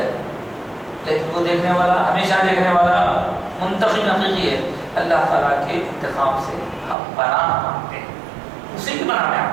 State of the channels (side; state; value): left; drops out; at 7.0 s